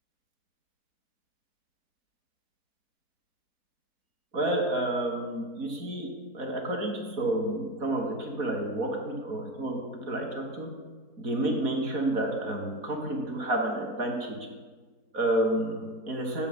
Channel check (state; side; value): late; left; 4.2 ms